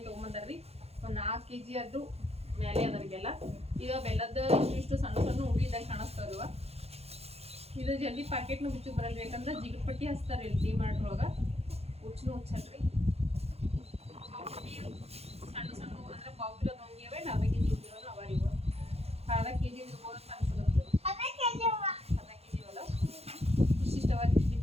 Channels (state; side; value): late; left; 0.30 ms